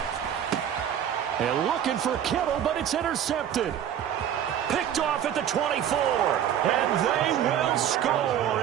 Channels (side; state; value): left; quieter; 9.8 dB